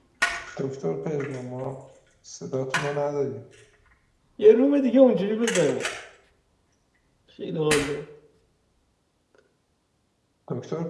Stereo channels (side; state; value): both; identical; correlation 1.00